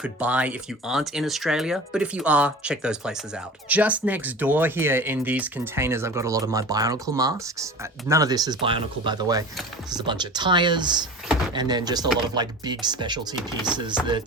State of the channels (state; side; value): normal; both; correlation 0.37